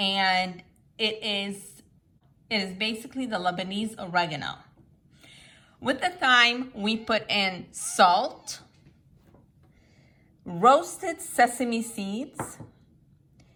it is basically the Lebanese oregano. With the thyme, we put in salt, roasted sesame seeds,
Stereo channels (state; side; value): identical; both; correlation 1.00